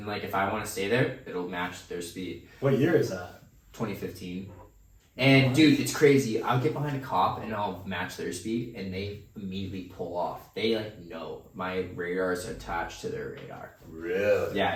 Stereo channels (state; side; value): identical; both; correlation 1.00